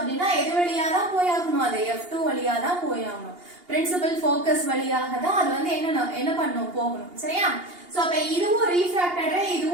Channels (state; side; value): late; left; 2.8 ms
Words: எது வழியா தான் போயாகணும், அது F2 வழியா தான் போயாகணும். பிரின்சிபல் ஃபோக்கஸ் வழியாக தான் அது வந்து என்ன பண்ணணும், போகணும். சரியா? சோ அப்ப இதுவும் ரீஃப்ராக்டட் ரே,